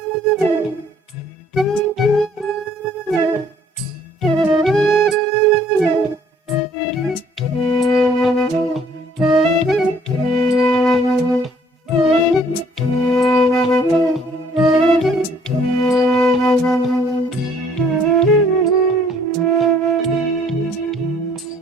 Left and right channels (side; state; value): both; normal; correlation 0.60